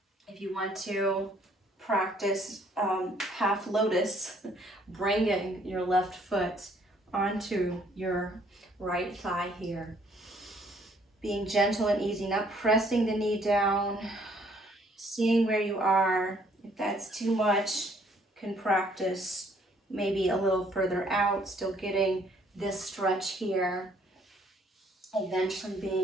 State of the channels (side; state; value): both; normal; correlation 0.64